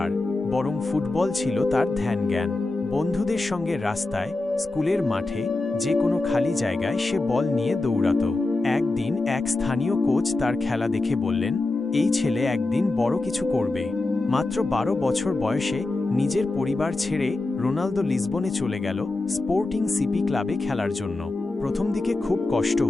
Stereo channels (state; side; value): quieter; right; 3.1 dB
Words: বরং ফুটবল ছিল তার ধ্যান জ্ঞান। বন্ধুদের সঙ্গে রাস্তায়, স্কুলের মাঠে, যে কোনো খালি জায়গায় সে বল নিয়ে দৌড়াত। একদিন এক স্থানীয় কোচ তার খেলা দেখে বললেন, এই ছেলে একদিন বড় কিছু করবে। মাত্র 12 বছর বয়সে নিজের পরিবার ছেড়ে রোনালদো লিসবনে চলে গেল স্পোর্টিং সিপি ক্লাবে খেলার জন্য। প্রথম দিকে খুব কষ্ট